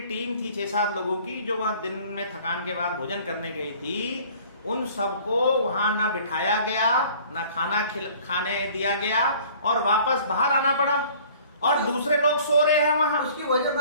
टीम थी 6-7 लोगों की, जो वहां दिन में थकान के बाद भोजन करने गई थी, उन सबको वहां ना बिठाया गया, ना खाने दिया गया और वापस बाहर आना पड़ा और दूसरे लोग सो रहे हैं वहां। उसकी वजह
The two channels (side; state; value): both; inverted; correlation -0.51